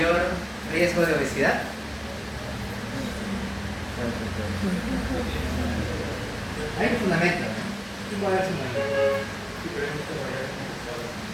riesgo de obesidad. Hay un fundamento, ¿no? Sí puede haber fundamento.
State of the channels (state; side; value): identical; both; correlation 1.00